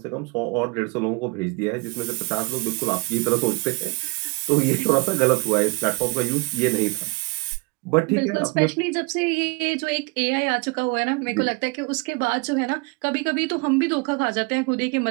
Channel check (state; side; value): quieter; left; 26.4 dB